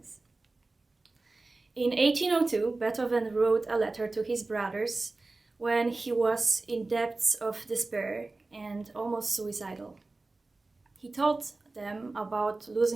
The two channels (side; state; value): left; quieter; 3.3 dB